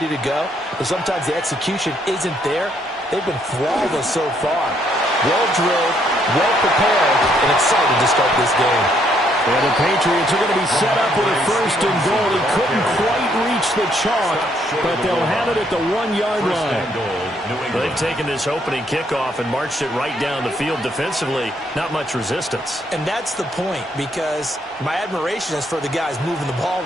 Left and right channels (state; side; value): normal; both; correlation 0.70